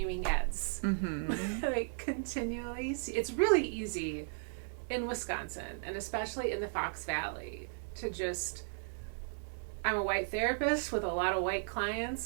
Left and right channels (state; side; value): silent; left; digital silence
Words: eds. Like, continually. It's really easy in Wisconsin, and especially in the Fox Valley, to just... I'm a white therapist with a lot of white